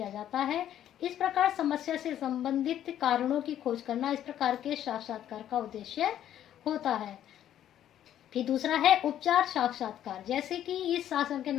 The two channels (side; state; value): right; quieter; 11.1 dB